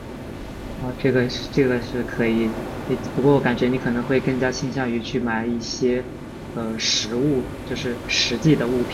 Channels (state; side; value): identical; both; correlation 1.00